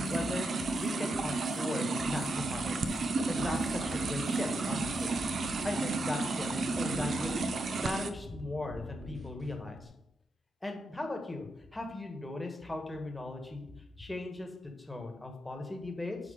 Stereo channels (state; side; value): normal; both; correlation 0.84